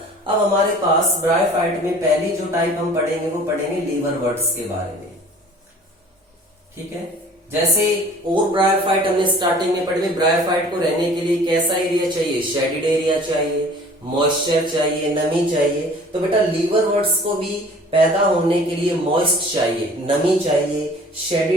अब हमारे पास ब्रायोफाइट में पहली जो टाइप हम पढ़ेंगे वो पढ़ेंगे लीवरवर्ट्स के बारे में। ठीक है। जैसे और ब्रायोफाइट हमने स्टार्टिंग में पढ़े, ब्रायोफाइट को रहने के लिए कैसा एरिया चाहिए? शेडिड एरिया चाहिए, मॉइस्चर चाहिए, नमी चाहिए। तो बेटा लीवरवर्ट्स को भी पैदा होने के लिए मॉइस्ट चाहिए, नमी चाहिए,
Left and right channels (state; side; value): normal; both; correlation 0.48